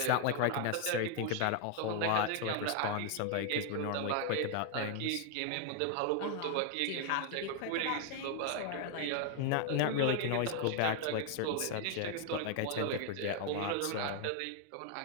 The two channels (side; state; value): both; different; correlation 0.00